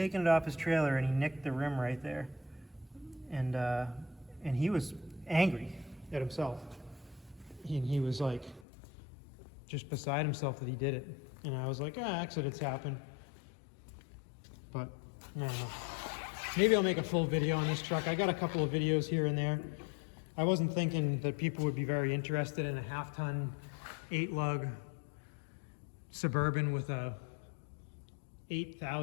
it off his trailer, and he nicked the rim right there, and he was angry at himself. He was like just beside himself that he did it, and I was like, accidents happen. But I don't know. Maybe I'll make a full video on this truck. I got a couple of videos here and there. I wasn't thinking that people would be very interested in a half-ton 8-lug Suburban with a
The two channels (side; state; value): right; drops out; at 8.7 s